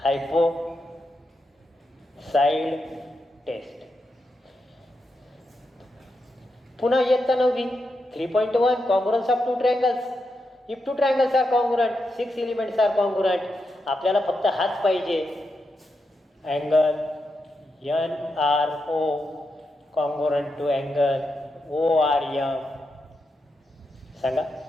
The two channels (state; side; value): normal; both; correlation 0.85